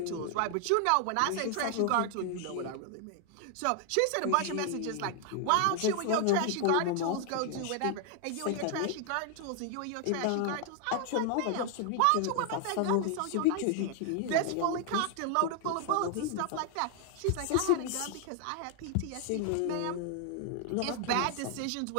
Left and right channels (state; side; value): different; both; correlation 0.00